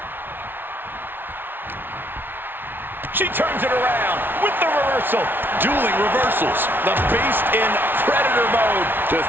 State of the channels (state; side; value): late; left; 0.099 ms